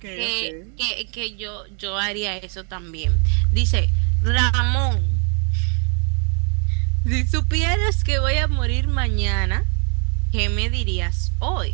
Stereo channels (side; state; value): left; quieter; 39.9 dB